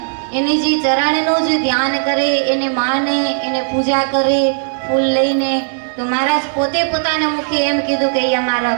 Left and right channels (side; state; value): left; silent; digital silence